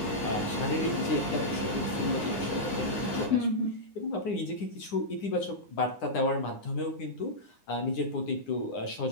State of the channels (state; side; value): late; right; 9.8 ms